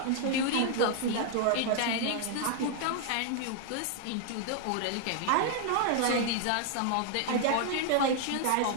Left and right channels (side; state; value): both; different; correlation 0.00